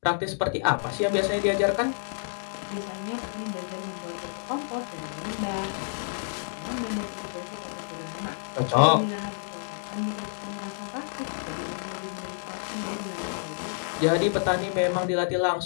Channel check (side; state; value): right; silent; digital silence